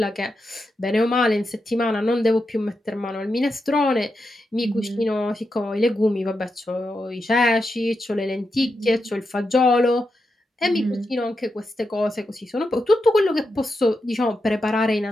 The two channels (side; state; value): both; normal; correlation 0.86